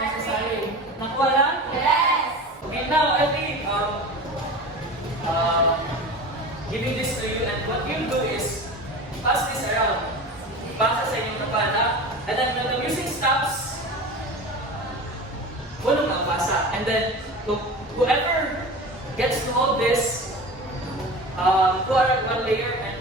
Nakuha lang? Yes. Okay, now I think giving this to you, and what you'll do is pass this around. Basa sa inyong kapana, and then when the music stops, walang makabasa. And then whoever gets to hold this, put one layer, and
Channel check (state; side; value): normal; both; correlation 0.32